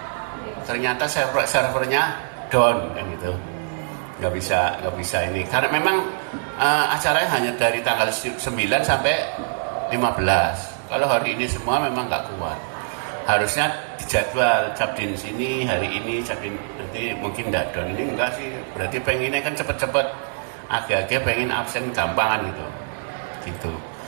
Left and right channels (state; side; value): silent; left; digital silence